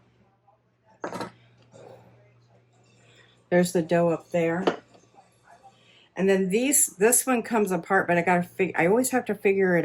There's the dough up there. And then this one comes apart, but I always have to figure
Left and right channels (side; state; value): both; identical; correlation 1.00